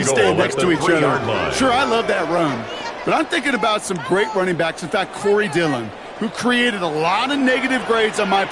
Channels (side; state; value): both; identical; correlation 1.00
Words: stand next to each other. Sure, I love that run. But I'm thinking about some great running backs. In fact, Corey Dillon, who created a lot of negative grades on my